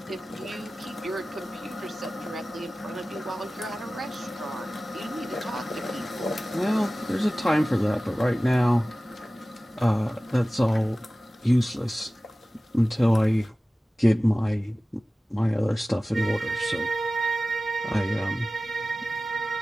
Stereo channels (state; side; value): normal; both; correlation 0.96